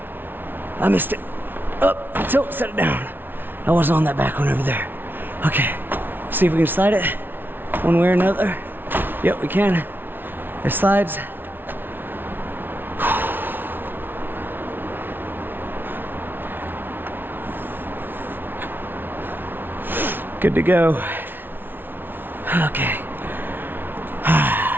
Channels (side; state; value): left; late; 0.098 ms